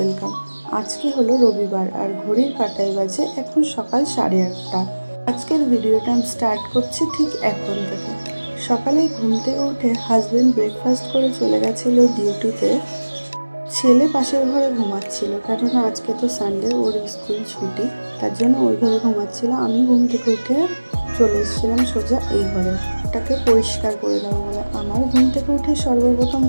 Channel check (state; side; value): inverted; both; correlation -1.00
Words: আজকে হলো রবিবার আর ঘড়ির কাঁটায় বাজে এখন সকাল 8:30। আজকের ভিডিওটা আমি স্টার্ট করছি ঠিক এখন থেকে। সকালে ঘুম থেকে উঠে হাজব্যান্ড ব্রেকফাস্ট করে চলে গেছিলো ডিউটিতে। ছেলে পাশের ঘরে ঘুমাচ্ছিল, কেননা আজকে তো সানডে, ওর স্কুল ছুটি, তার জন্য ওই ঘরে ঘুমাচ্ছিল। আমি ঘুম থেকে উঠে চলে এসেছিলাম সোজা এই ঘরে, ওটাকে পরিষ্কার করে দেবো বলে। আমার ঘুম থেকে উঠে সর্বপ্রথম